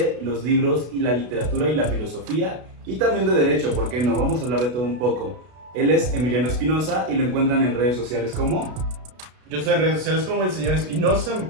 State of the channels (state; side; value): late; left; 32 ms